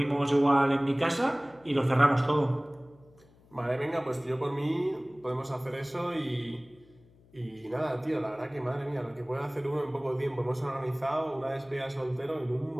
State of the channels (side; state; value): left; noise; hum, 28 dB below the sound